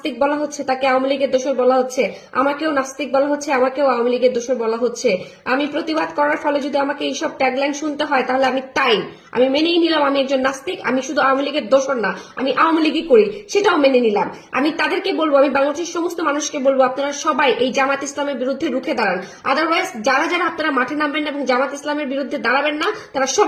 বলা হচ্ছে, তাকে আওয়ামী লীগের দোসর বলা হচ্ছে, আমাকেও নাস্তিক বলা হচ্ছে, আমাকেও আওয়ামী লীগের দোসর বলা হচ্ছে। আমি প্রতিবাদ করার ফলে যদি আমাকে এইসব ট্যাগলাইন শুনতে হয় তাহলে আমি মেনেই নিলাম আমি একজন নাস্তিক, আমি শুধু আওয়ামী লীগের দোসর না, আমি আওয়ামী লীগই করি, সেটাও মেনে নিলাম। আমি তাদেরকে বলবো, আমি বাংলাদেশের সমস্ত মানুষকে বলবো, আপনারা সবাই এই জামাত ইসলামের বিরুদ্ধে রুখে দাঁড়ান। আদারওয়াইজ যারা যারা আপনারা মাঠে নামবেন না এবং জামাত ইসলামের বিরুদ্ধে দাঁড়াবেন না, তারা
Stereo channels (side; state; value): both; identical; correlation 1.00